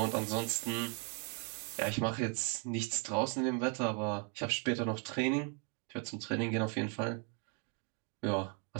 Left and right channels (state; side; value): quieter; left; 35.9 dB